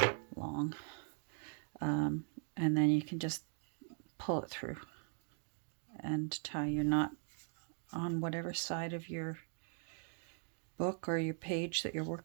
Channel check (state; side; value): silent; left; 51 dB below the other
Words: long, and then you can just pull it through and tie your knot on whatever side of your book or your page that you're